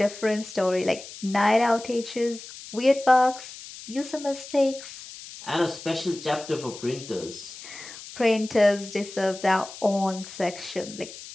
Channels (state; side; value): noise; left; hiss, 14 dB below the sound